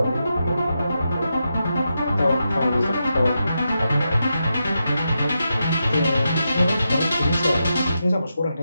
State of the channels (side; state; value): both; inverted; correlation -0.86